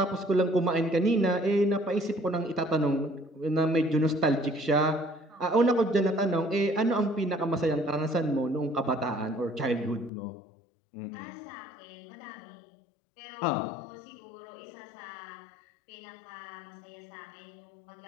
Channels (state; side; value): drops out; right; at 10.1 s